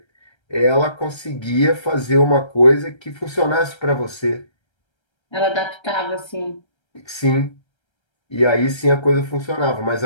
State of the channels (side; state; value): right; late; 1.3 ms